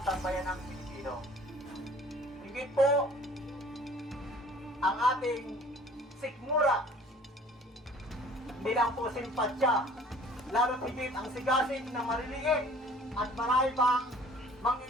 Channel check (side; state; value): both; normal; correlation 0.51